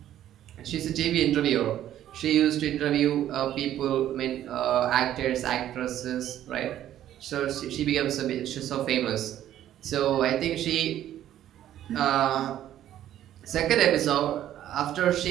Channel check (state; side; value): quieter; left; 11.9 dB